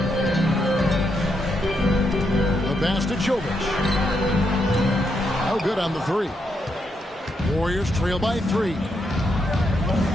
The pass to Jovic. No good on the 3. Warriors trail by 3.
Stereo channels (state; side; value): normal; both; correlation 0.80